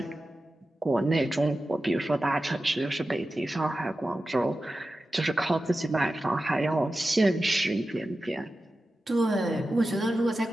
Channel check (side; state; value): both; normal; correlation 0.93